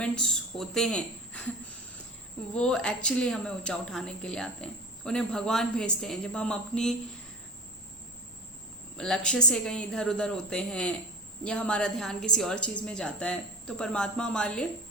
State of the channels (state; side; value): normal; both; correlation 0.34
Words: होते हैं वो एक्चुअली हमें ऊंचा उठाने के लिए आते हैं। उन्हें भगवान भेजते हैं। जब हम अपनी लक्ष्य से कहीं इधर उधर होते हैं या हमारा ध्यान किसी और चीज़ में जाता है, तो परमात्मा हमारे लिए